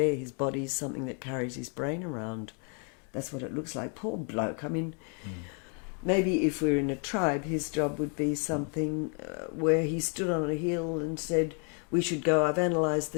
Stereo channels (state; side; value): quieter; right; 39.8 dB